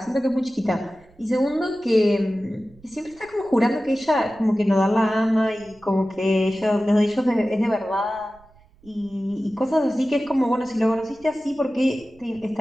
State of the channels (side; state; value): right; noise; rumble, 27 dB below the sound